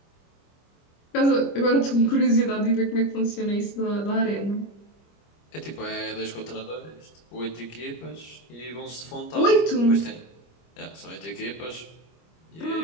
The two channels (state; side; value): late; right; 25 ms